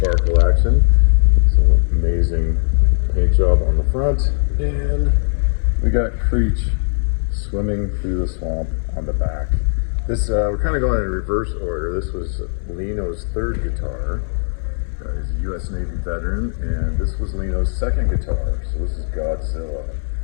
action. So amazing paint job on the front, and we got Creech swimming through the swamp on the back. This we're kind of going in reverse order. This was Lino's 3rd guitar. He's a U.S. Navy veteran, and this was Lino's 2nd guitar. So this is Godzilla.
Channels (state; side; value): silent; right; 66 dB below the other